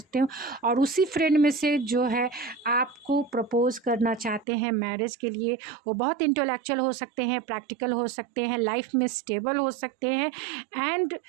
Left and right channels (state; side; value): drops out; left; at 4.5 s